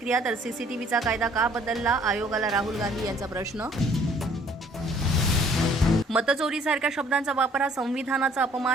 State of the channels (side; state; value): both; normal; correlation 0.59